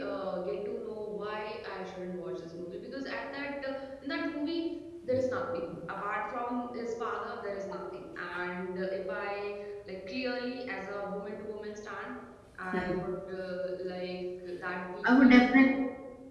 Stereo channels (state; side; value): identical; both; correlation 1.00